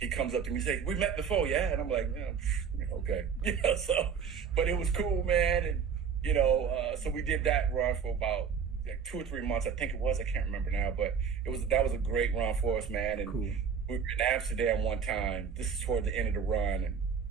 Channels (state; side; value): quieter; left; 6.8 dB